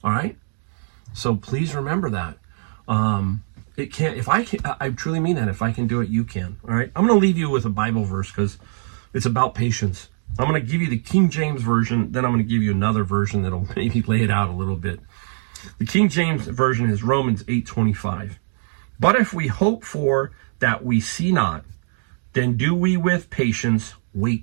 All right. So please remember that. It can't, if I can, I truly mean that. If I can do it, you can. All right. I'm going to leave you with a Bible verse because it's about patience. I'm going to give you the King James Version. Then I'm going to give you another version that'll maybe lay it out a little bit. The King James Version is Romans 8:25. But if we hope for that we see not, then do we with patience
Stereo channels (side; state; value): left; silent; digital silence